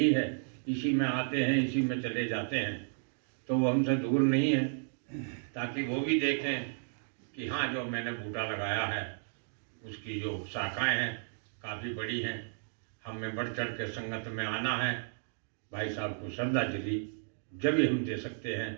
है, इसी में आते हैं इसी में चले जाते हैं, तो वो हमसे दूर नहीं है, ताकि वो भी देखें कि हाँ जो मैंने बूटा लगाया है उसकी जो शाखाएं हैं काफ़ी बड़ी हैं। हमें बढ़ चढ़ के संगत में आना है। भाई साहब को श्रद्धांजलि जब भी हम दे सकते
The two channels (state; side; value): silent; left; digital silence